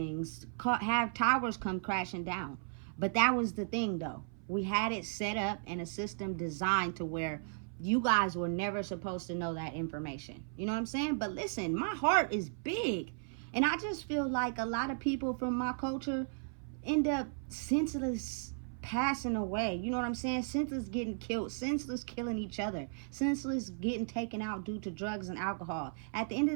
Have towers come crashing down. But that was the thing, though. We had it set up in a system designed to where you guys were never supposed to know that information. You know what I'm saying? But listen, my heart is big. And I just feel like a lot of people from my culture end up senseless passing away. You know what I'm saying? Senseless getting killed. Senseless killing each other. Senseless getting taken out due to drugs and alcohol. At the end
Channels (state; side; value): silent; left; 54 dB below the other